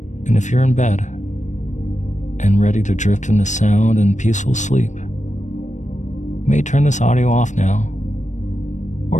and if you're in bed and ready to drift into sound and peaceful sleep, you may turn this audio off now,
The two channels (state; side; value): late; right; 0.35 ms